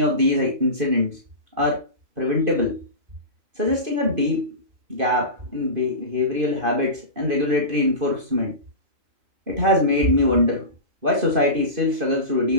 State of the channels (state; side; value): late; left; 2.5 ms